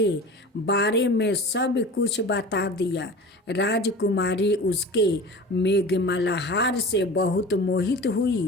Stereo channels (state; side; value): normal; both; correlation 0.36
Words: बारे में सब कुछ बता दिया। राजकुमारी उसके मेघमल्हार से बहुत मोहित